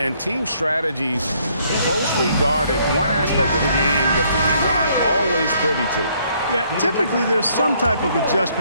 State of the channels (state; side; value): inverted; both; correlation -0.67